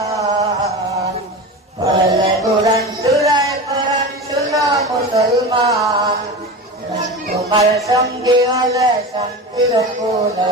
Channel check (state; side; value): normal; both; correlation 0.28